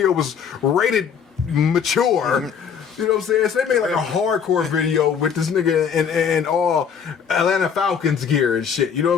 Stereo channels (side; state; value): right; quieter; 7.1 dB